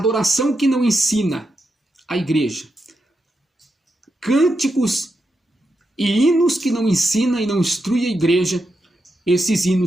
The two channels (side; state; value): both; normal; correlation 0.85